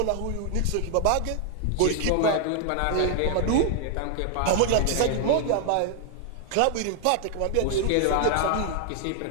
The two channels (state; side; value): different; both; correlation 0.00